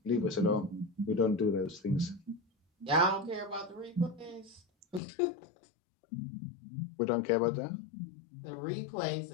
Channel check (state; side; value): drops out; right; at 5.0 s